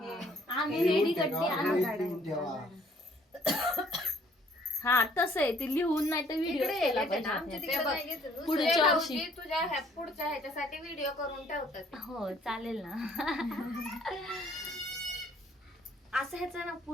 आम्ही लिहून रेडी ठेवा, गड्डी आणू. लिहून ठेवा. हा तसं आहे ते लिहून नाही तर व्हिडिओ इकडे केला येते ना, पाहिजे आमच्या आपल्याला. तिकडे नाही घेत. दुसरे पुढच्या वर्षी. भाऊजी तुझ्या पुढच्या ह्याच्यासाठी व्हिडिओ करून ठेवतात. हो चालेल ना. असं ह्याचा ना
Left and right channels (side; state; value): both; normal; correlation 0.61